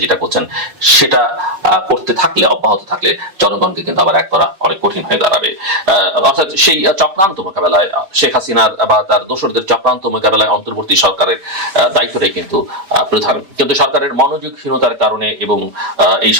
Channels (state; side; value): late; left; 5.4 ms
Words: যেটা করছেন, সেটা করতে থাকলে, অব্যাহত থাকলে জনগণকে কিন্তু আবার এক করা অনেক কঠিন হয়ে দাঁড়াবে। অর্থাৎ সেই চক্রান্ত মোকাবেলায়, শেখ হাসিনা বা তার দোসরদের চক্রান্ত মোকাবেলায় অন্তর্বর্তী সরকারের দায়িত্বটাই কিন্তু প্রধান। কিন্তু সরকারের মনোযোগহীনতার কারণে এবং এই